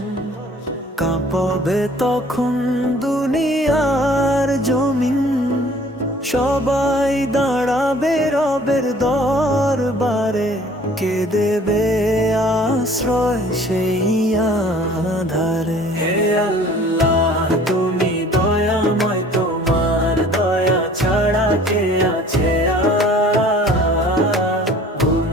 কাঁপবে তখন দুনিয়ার জমিন। সবাই দাঁড়াবে রবের দরবারে, কে দেবে আশ্রয় সেই আধারে। হে আল্লাহ তুমি দয়াময়, তোমার দয়া ছাড়া কে আছে আর?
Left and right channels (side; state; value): both; normal; correlation 0.51